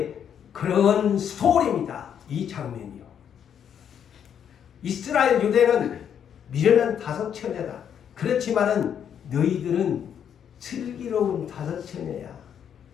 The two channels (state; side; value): quieter; right; 8.6 dB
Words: 그런 스토리입니다. 이 장면이요. 이스라엘 유대는 미련한 다섯 처녀다. 그렇지만은 너희들은 슬기로운 다섯 처녀야.